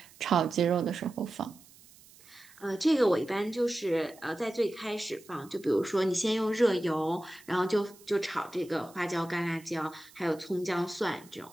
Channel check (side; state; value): right; noise; hiss, 24 dB below the sound